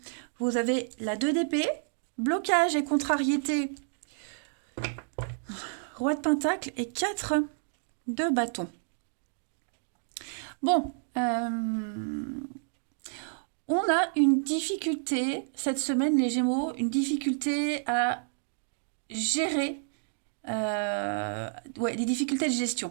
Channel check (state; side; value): silent; left; digital silence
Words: vous avez la 2 d'épée, blocage et contrariété. Roi de Pentacle et 4 de bâton. Bon, on a une difficulté cette semaine, les Gémeaux, une difficulté à gérer des difficultés de